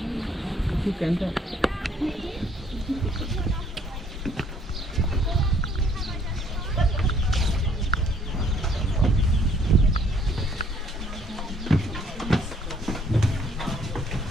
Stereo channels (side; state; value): both; normal; correlation 0.63